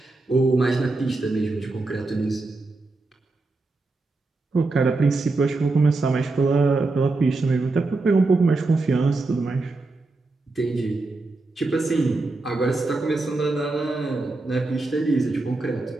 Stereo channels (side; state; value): left; quieter; 3.3 dB